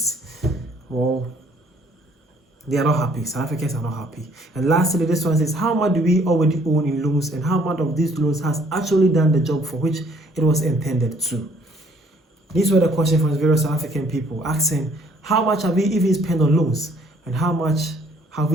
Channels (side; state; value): both; normal; correlation 0.62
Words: Well, they are not happy. South Africans are not happy. And lastly, this one says, how much do we already own in loans, and how much of these loans has actually done the job for which it was intended to? These were the questions from various South African people asking, how much have we even spent on loans, and how much have